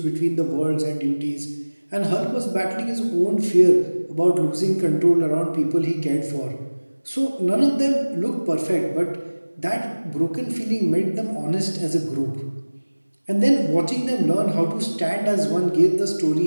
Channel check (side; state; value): both; inverted; correlation -1.00